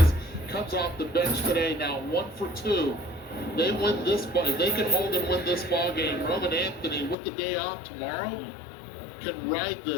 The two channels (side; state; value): right; drops out; at 7.2 s